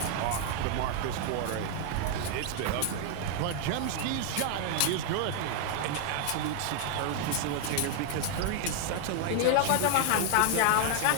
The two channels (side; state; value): both; different; correlation 0.00